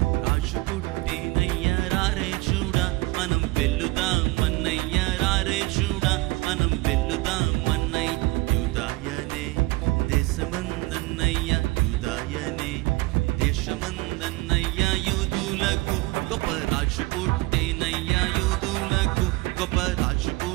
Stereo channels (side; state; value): left; quieter; 21.8 dB